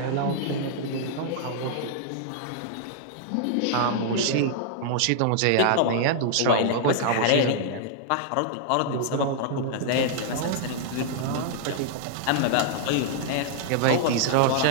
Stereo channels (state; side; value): different; both; correlation -0.01